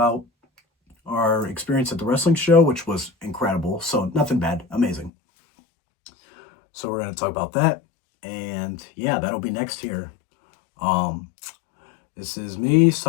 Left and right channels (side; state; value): right; drops out; at 5.1 s